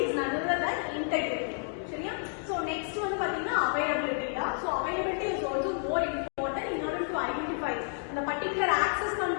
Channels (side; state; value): right; silent; 57 dB below the other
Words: none other than integrity. So next one availability. So availability is also more important in order to identify the particular access